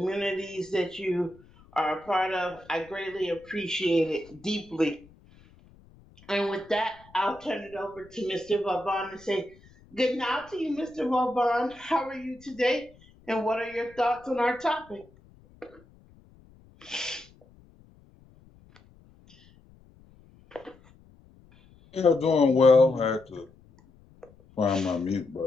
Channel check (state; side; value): noise; left; rumble, 27 dB below the sound